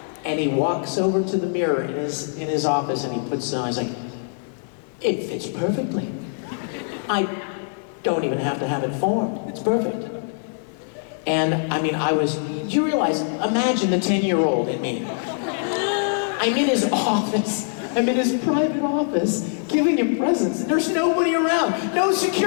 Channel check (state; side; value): silent; right; digital silence